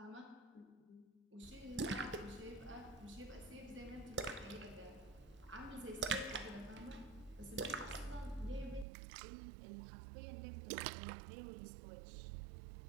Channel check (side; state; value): left; drops out; at 8.8 s